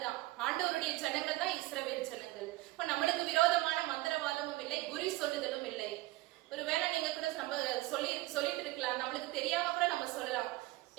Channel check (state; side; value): quieter; left; 19.5 dB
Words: தான், ஆண்டவருடைய ஜனங்கள் தான் இஸ்ரவேல் ஜனங்கள். இப்ப நம்மளுக்கு விரோதமான மந்திரவாதமும் இல்லை, குறி சொல்லுதலும் இல்லை. ஒருவேளை நீங்க கூட நம்ம சொல்லிட்டு இருக்கலாம், நம்மளுக்கு தெரியாம கூட நம்ம சொல்லலாம்,